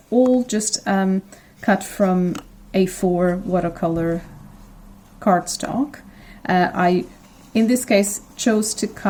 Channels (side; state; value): both; identical; correlation 1.00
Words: all just cut from A4 watercolor cardstock. I, in this case, chose to